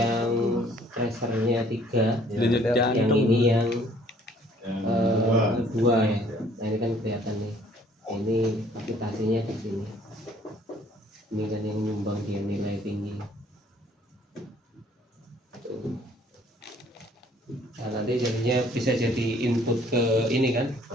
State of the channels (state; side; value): normal; both; correlation 0.59